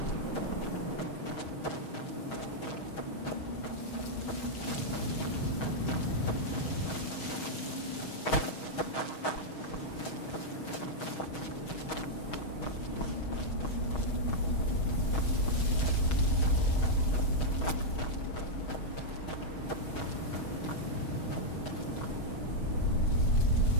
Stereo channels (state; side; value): late; right; 6.3 ms